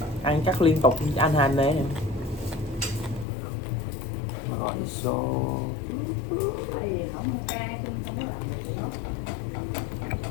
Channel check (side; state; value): right; drops out; at 3.2 s